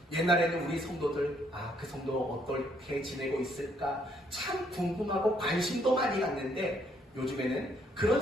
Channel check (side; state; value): both; normal; correlation 0.69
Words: 옛날에는 우리 성도들 그 성도 어떻게 지내고 있을까 참 궁금하고 관심도 많이 갔는데 요즘에는